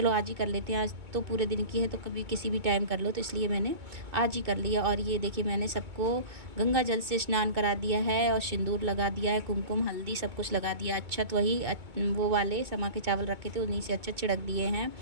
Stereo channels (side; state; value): left; late; 2.2 ms